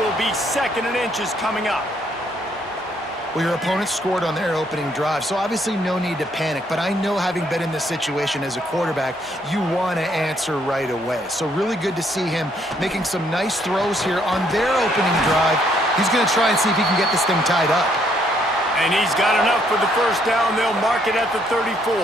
will be 2nd and inches coming up. Well, your opponent scored on their opening drive, so obviously no need to panic. But I know, having been in this situation as a quarterback, you want to answer right away. So really good to see him making some nice throws here on their opening drive. He's going to try and see if he can get this thing tied up. And he's got enough for the 1st down. They'll mark it at the 34.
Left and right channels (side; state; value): both; normal; correlation 0.69